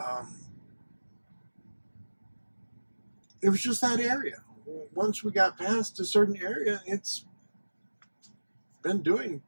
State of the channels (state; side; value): inverted; both; correlation -1.00